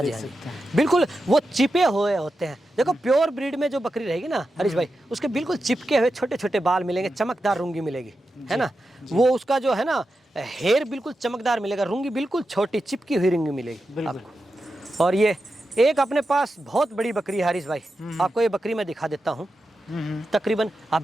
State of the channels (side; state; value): both; normal; correlation 0.90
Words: जी, देख हाँ जी, सकते हैं। बिल्कुल वो चिपे हुए होते हैं। देखो प्योर ब्रीड में जो बकरी रहेगी ना हरीश भाई, उसके बिल्कुल चिपके हुए छोटे छोटे बाल मिलेंगे, चमकदार रूंगी मिलेगी, है ना। वो उसका जो है ना हेयर बिल्कुल चमकदार मिलेगा, रूंगी बिल्कुल छोटी चिपकी हुई रूंगी मिलेगी आपको। और ये एक अपने पास बहुत बड़ी बकरी है हरीश भाई, आपको ये बकरी मैं दिखा देता हूँ। तकरीबन